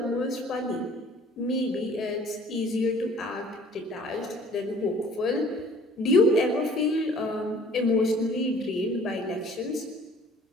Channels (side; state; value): both; normal; correlation 0.52